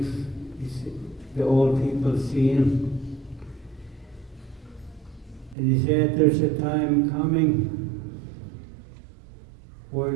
the old people seen. And he said there's a time coming where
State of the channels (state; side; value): drops out; left; at 5.6 s